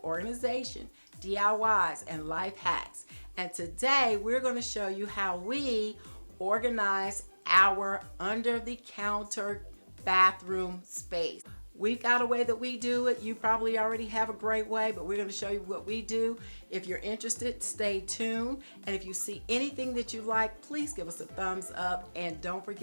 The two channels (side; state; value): both; inverted; correlation -1.00